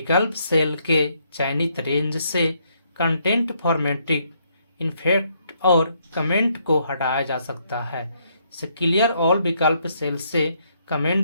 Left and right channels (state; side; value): inverted; both; correlation -0.72